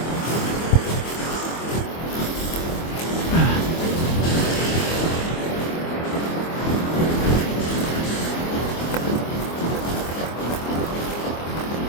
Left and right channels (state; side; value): late; right; 24 ms